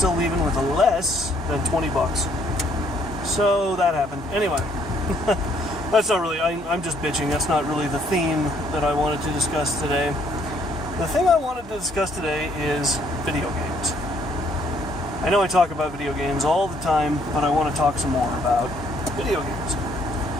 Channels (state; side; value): normal; both; correlation 0.66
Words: leaving with less than $20. So that happened. Anyway, that's not really, I'm just bitching. That's not really the theme that I wanted to discuss today. The thing I wanted to discuss today is video games. I know I talk about video games all the time, but I want to talk some more about video games.